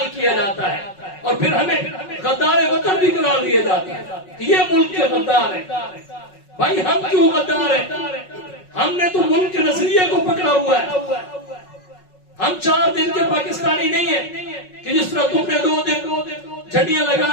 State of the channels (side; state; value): right; late; 5.4 ms